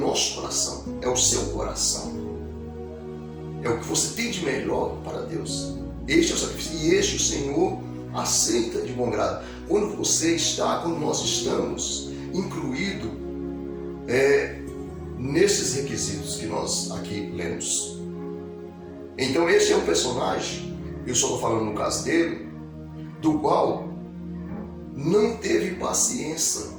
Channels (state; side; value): identical; both; correlation 1.00